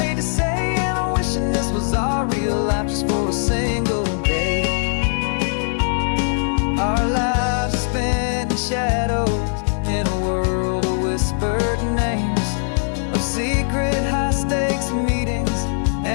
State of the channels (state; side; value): silent; right; digital silence